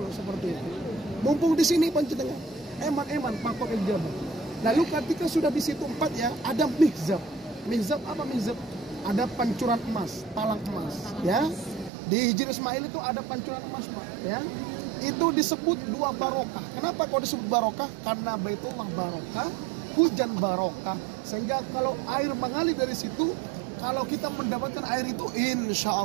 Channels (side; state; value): left; drops out; at 11.9 s